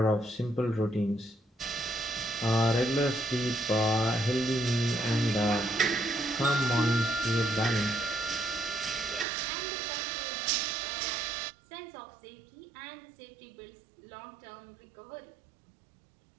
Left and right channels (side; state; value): left; drops out; at 9.2 s